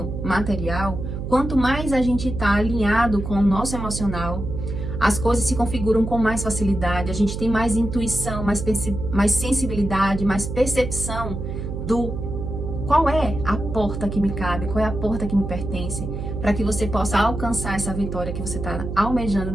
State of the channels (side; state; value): right; noise; hum, 5 dB below the sound